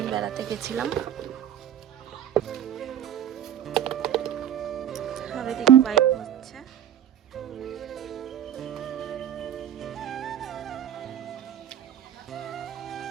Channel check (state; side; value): quieter; left; 10.3 dB